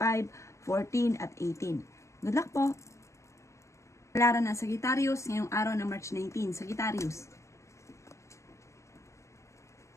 14 at 18. Good luck po! Palaran ng Sagittarius ngayong araw ng March 19, Sagittarius.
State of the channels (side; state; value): right; late; 0.14 ms